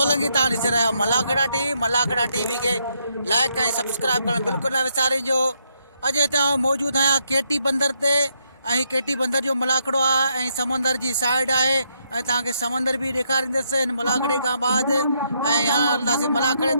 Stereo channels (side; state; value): both; inverted; correlation -0.76